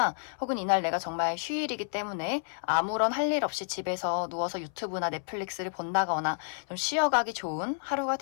혹은 이날 내가 정말 휴일이기 때문에 아무런 할 일 없이 집에서 누워서 유튜브나 넷플릭스를 본다거나 좀 쉬어가기 좋은 하루가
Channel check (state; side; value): silent; right; 58 dB below the other